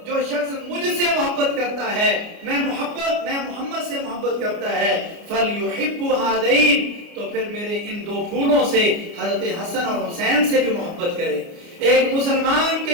جو شخص مجھ سے محبت کرتا ہے، میں محمد سے محبت کرتا ہے، فلیحب ہذین، تو پھر میرے ان دو پھولوں سے حضرت حسن اور حسین سے بھی محبت کرے۔ ایک مسلمان کے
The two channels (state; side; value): late; left; 29 ms